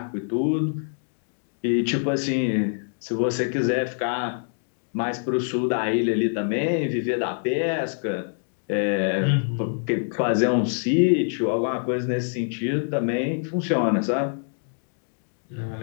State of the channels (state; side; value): silent; right; 62 dB below the other